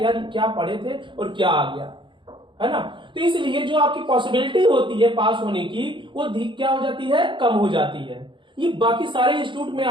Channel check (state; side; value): late; left; 0.24 ms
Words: यार क्या पढ़े थे और क्या आ गया, है ना। तो इसलिए जो आपकी पॉसिबिलिटी होती है पास होने की वो क्या हो जाती है, कम हो जाती है। ये बाकी सारे इंस्टीट्यूट में